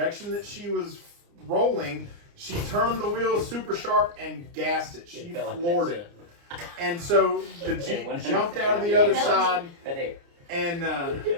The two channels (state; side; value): late; left; 29 ms